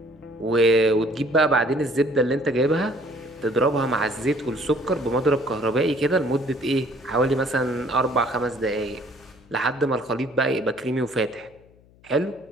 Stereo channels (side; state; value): left; noise; hum, 28 dB below the sound